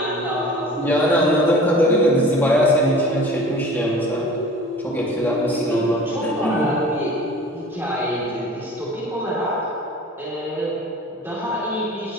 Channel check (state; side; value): normal; both; correlation 0.43